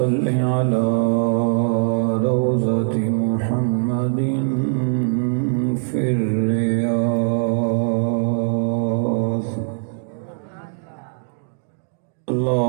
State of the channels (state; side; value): silent; left; digital silence